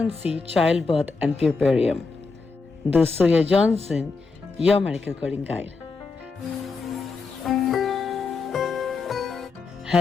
Childbirth and Puerperium. This is Surya Johnson, your medical coding guide.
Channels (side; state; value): right; quieter; 4.4 dB